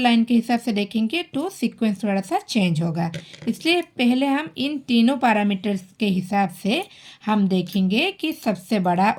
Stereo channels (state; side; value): identical; both; correlation 1.00